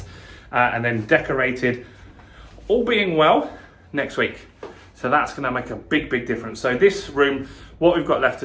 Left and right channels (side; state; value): both; identical; correlation 1.00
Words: And then decorated, all being well, next week. So that's going to make a big, big difference. So this room, what we've got left to